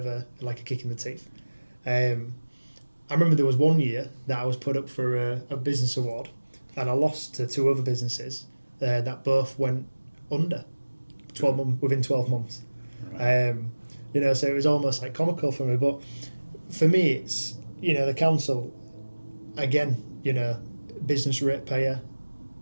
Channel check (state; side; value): inverted; both; correlation -1.00